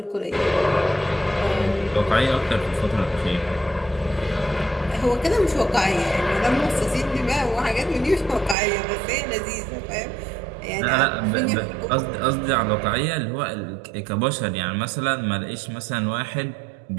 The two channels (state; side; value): drops out; left; at 8.6 s